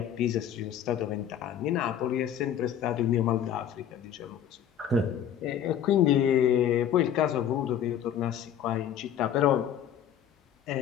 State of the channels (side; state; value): right; quieter; 9.5 dB